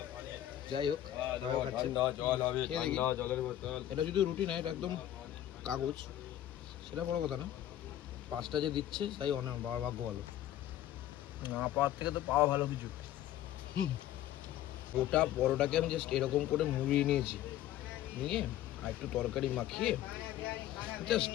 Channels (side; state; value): right; quieter; 12.5 dB